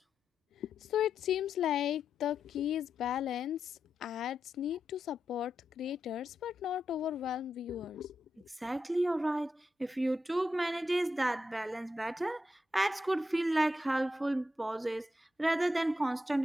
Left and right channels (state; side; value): normal; both; correlation 0.85